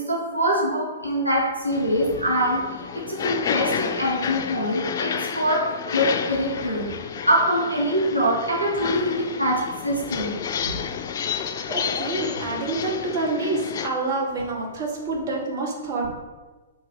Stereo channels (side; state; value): both; inverted; correlation -0.42